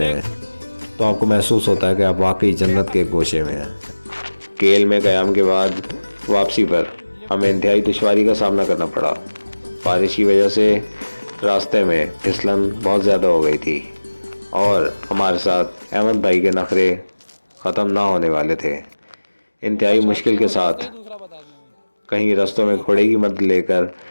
हैं, तो तो आपको महसूस होता है कि आप वाकई जन्नत के गोशे में हैं। केल में क़याम के बाद वापसी पर हमें इंतहाई दुश्वारी का सामना करना पड़ा। बारिश की वजह से रास्ते में फिसलन बहुत ज़्यादा हो गई थी और हमारे साथ अहमद भाई के नखरे ख़त्म ना होने वाले थे। इंतहाई मुश्किल के साथ कहीं रास्तों में घोड़े की मदद लेकर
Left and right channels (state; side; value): inverted; both; correlation -1.00